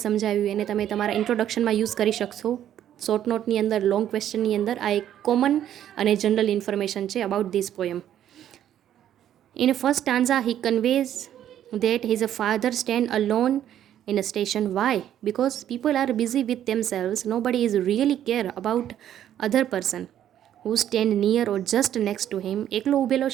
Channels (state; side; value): quieter; left; 10.9 dB